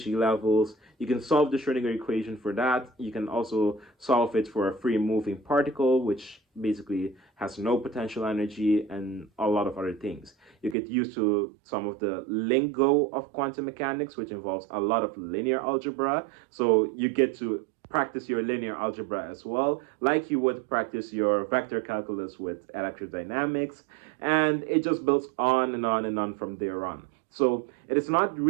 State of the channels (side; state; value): left; drops out; at 10.8 s